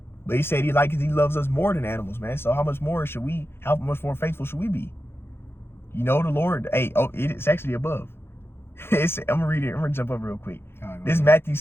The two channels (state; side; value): late; right; 0.11 ms